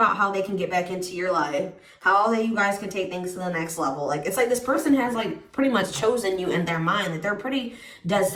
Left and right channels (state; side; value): identical; both; correlation 1.00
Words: how they can get back into your life, how you guys can take things to the next level. Like, it's like this person has like pretty much chosen you in their mind, that they're pretty dead